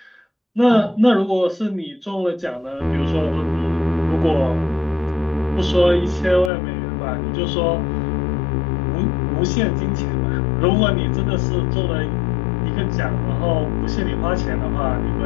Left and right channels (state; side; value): drops out; right; at 6.5 s